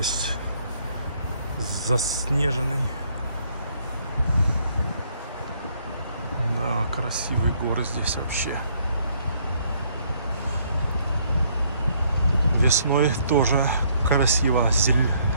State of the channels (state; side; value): inverted; both; correlation -0.67